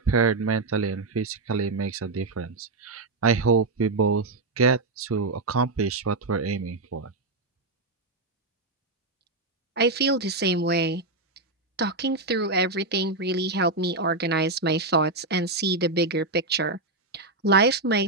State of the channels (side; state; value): left; quieter; 3.2 dB